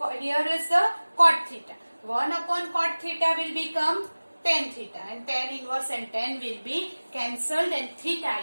here is the cot theta. 1 upon cot theta will become tan theta and tan inverse and tan will be cancelled and theta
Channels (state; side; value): inverted; both; correlation -1.00